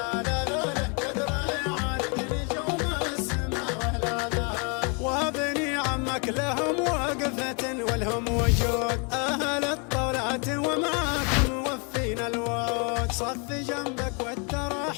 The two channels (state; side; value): quieter; right; 35.5 dB